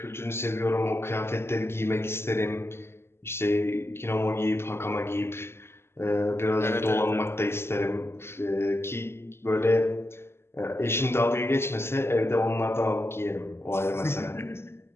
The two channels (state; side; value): late; right; 0.12 ms